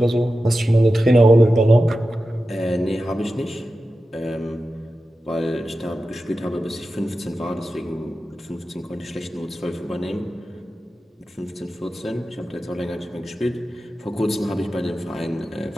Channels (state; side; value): normal; both; correlation 0.92